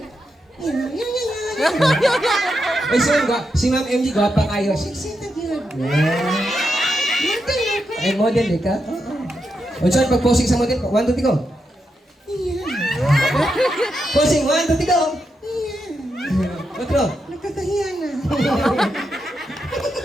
Ay, sir, si Ma'am MG, gwapa kayo. Sexy na yun. Ay, model, di ka? O, sir, pag-posing sa model, 1, 2, 3, go. Posing, 1, 2, 3, go. Otro. Nakakahiya na.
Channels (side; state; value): both; normal; correlation 0.85